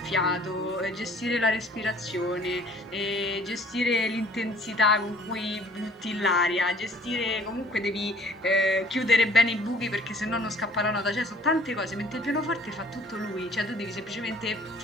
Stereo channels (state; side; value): normal; both; correlation 0.55